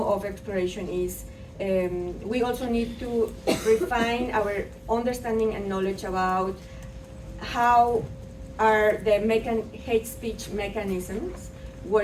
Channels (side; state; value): both; identical; correlation 1.00